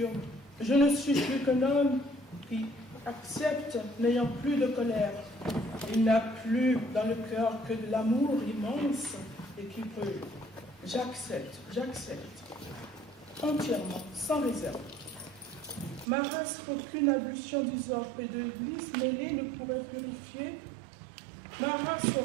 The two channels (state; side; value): drops out; left; at 16.1 s